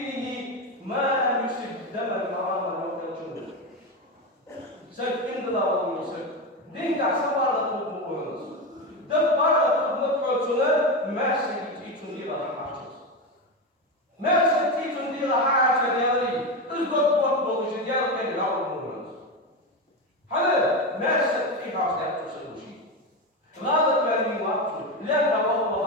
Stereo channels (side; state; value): both; normal; correlation 0.16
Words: ما لم يسب دما حراما أو كالجنود. سب إن الله ويسب دين كعسبارة تقوم دبارة تقوم سنة ما سيجي تنير على الحاجز.